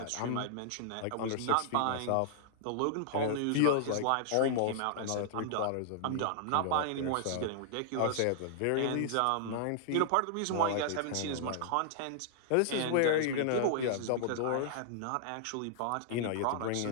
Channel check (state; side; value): different; both; correlation -0.01